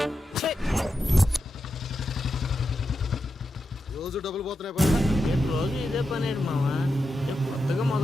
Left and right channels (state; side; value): normal; both; correlation 0.88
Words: రోజు డబ్బులు పోతున్నాయి. రోజు ఇదే పని మావా, కొత్తగా